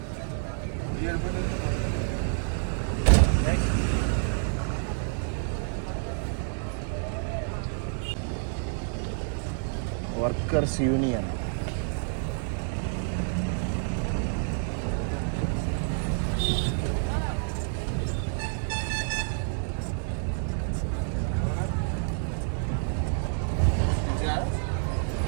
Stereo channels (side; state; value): left; silent; 59 dB below the other